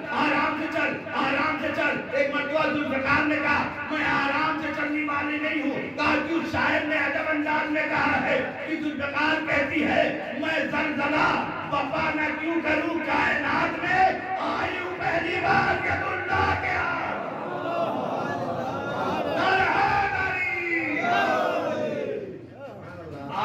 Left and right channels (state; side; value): identical; both; correlation 1.00